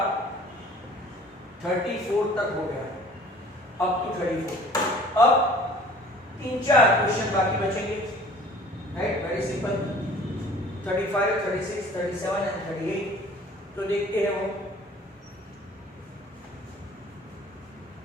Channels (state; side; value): normal; both; correlation 0.50